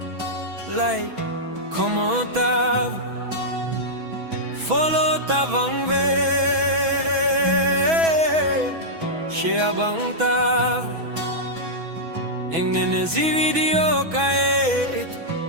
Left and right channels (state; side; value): late; left; 6.1 ms